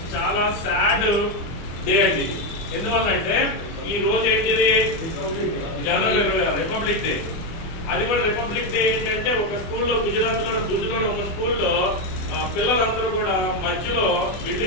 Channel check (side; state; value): right; late; 24 ms